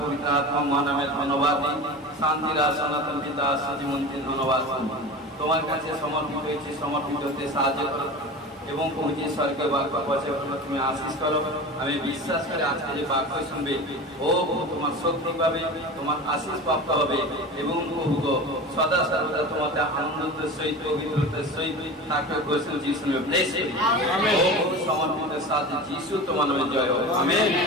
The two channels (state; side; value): normal; both; correlation 0.32